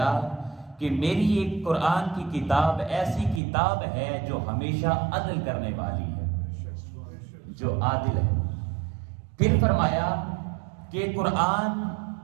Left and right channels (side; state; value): left; drops out; at 3.4 s